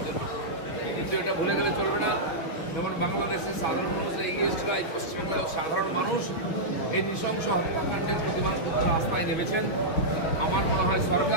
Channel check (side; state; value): right; late; 6.6 ms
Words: জন্য। কিন্তু এটা ভুলে গেলে চলবে না। যেমন বাংলাদেশের সাধারণ মানুষের এগেইনস্টরা, এই পশ্চিমবাংলার সাধারণ মানুষ এই নৃশংস হত্যাকাণ্ডের প্রতিবাদ করতে রাস্তায় নেমেছেন। আমার মনে হয়